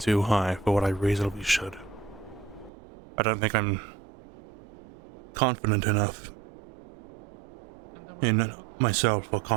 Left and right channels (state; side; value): drops out; left; at 2.7 s